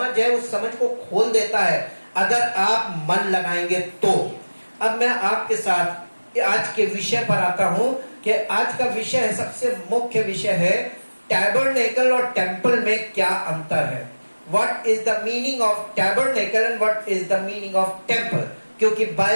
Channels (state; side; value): inverted; both; correlation -1.00